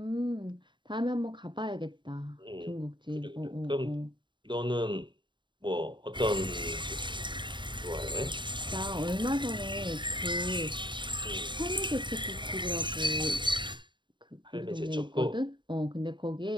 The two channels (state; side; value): late; left; 0.23 ms